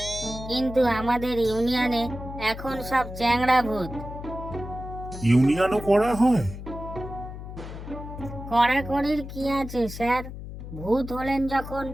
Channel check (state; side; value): noise; left; hum, 10 dB below the sound